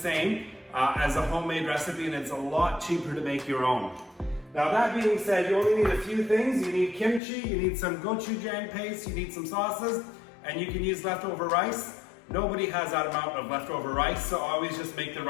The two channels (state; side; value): drops out; right; at 7.2 s